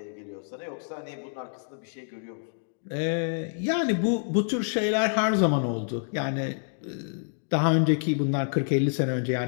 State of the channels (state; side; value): silent; right; digital silence